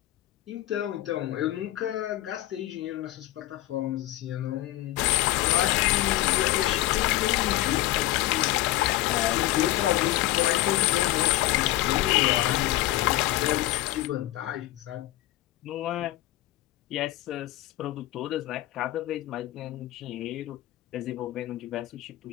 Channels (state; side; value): quieter; right; 16.0 dB